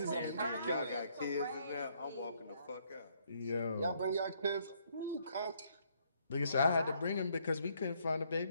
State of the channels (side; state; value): both; inverted; correlation -0.69